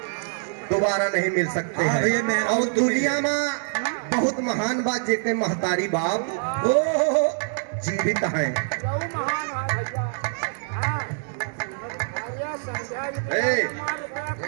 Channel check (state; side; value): silent; left; digital silence